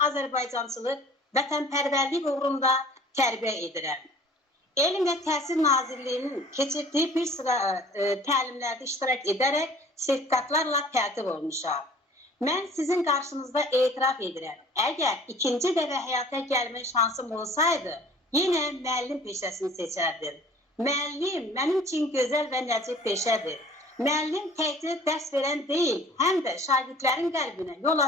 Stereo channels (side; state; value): both; normal; correlation 0.50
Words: Azərbaycançılıq, vətənpərvərlik uğrunda tərbiyə edirəm. Elm və Təhsil Nazirliyinin keçirdiyi bir sıra təlimlərdə iştirak edərək sertifikatlarla tərtib olmuşam. Mən sizin qarşınızda etiraf edirəm. Əgər ikinci dəfə həyata gəlmə şansım olsaydı, yenə müəllim peşəsini seçərdim. Müəllim mənim üçün gözəl və nəcib peşədir. Müəllim təkcə dərs verən deyil, həm də şagirdlərin qəlbinə yol